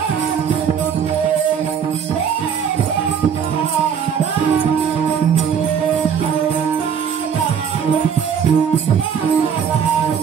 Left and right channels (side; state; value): left; quieter; 7.5 dB